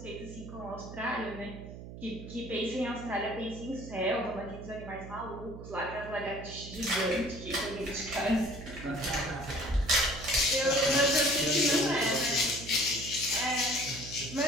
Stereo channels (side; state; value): right; noise; hum, 12 dB below the sound